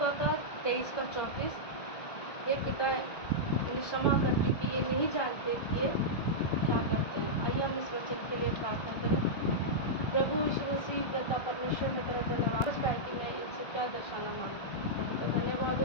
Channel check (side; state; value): right; late; 1.6 ms